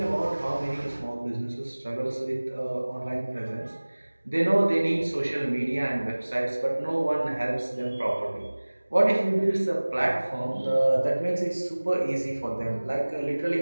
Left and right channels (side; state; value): both; inverted; correlation -1.00